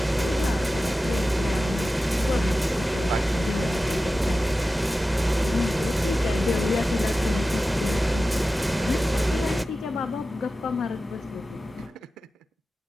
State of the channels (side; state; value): both; normal; correlation 0.94